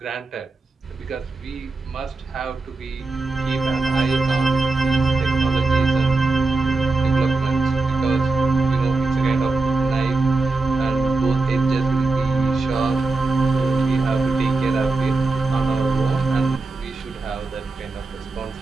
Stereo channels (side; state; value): left; quieter; 3.7 dB